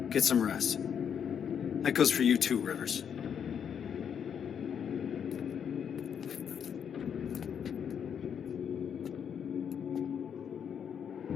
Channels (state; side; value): quieter; right; 7.9 dB